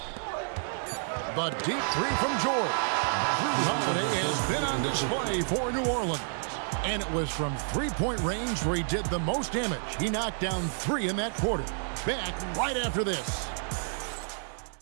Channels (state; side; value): silent; left; digital silence